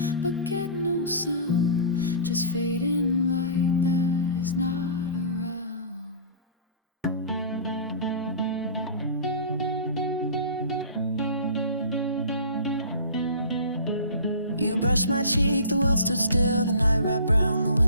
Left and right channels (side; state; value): both; inverted; correlation -0.40